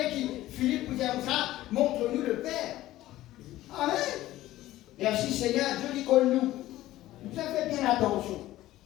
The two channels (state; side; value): quieter; right; 15.4 dB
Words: qui Philippe pour dire comme ça, montre-nous le Père. Amen. Merci Seigneur, Dieu dit qu'on nous. Nous avons fait bien attention.